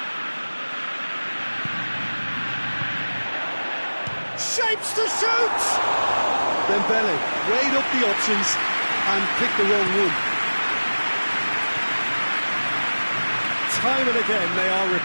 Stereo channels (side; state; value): both; inverted; correlation -1.00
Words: Shapes to shoot! Dembele weighed up the options and picked the wrong one. Time and again they are